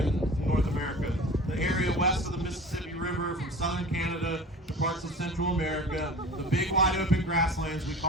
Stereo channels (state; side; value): normal; both; correlation 0.39